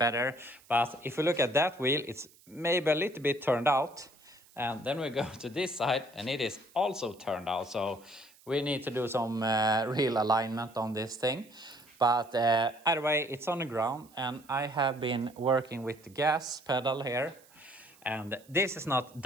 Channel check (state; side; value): noise; right; hiss, 27 dB below the sound